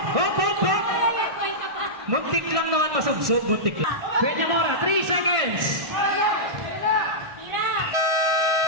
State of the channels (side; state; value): left; late; 1.5 ms